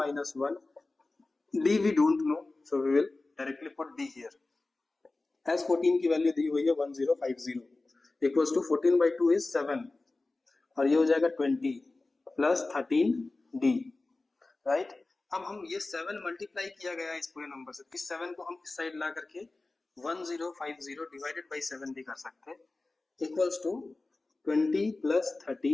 minus 1, d we don't know, so we will directly put d here. S14 की value दी हुई है 1050 equals to 14 by 2 is 7 और ये हो जाएगा 20 plus 13d, right. अब हम ये 7 मल्टीप्लाई किया गया है इस पूरे नंबर से, इस 7 को हम इस साइड ला करके 1050 डिवाइडेड बाई 7 भी कर सकते हैं, equals to 20 plus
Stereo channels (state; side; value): quieter; right; 3.2 dB